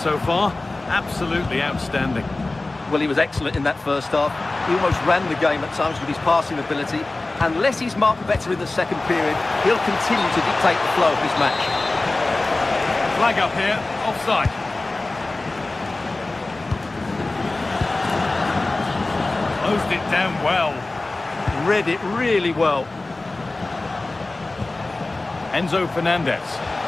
far. Absolutely outstanding. Well, he was excellent in that first half. He almost ran the game at times with his passing ability. Unless he's marked better in the second period, he'll continue to dictate the flow of this match. Flag up here, offside. Closed it down well. Read it really well. Enzo Fernandez.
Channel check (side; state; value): right; quieter; 3.1 dB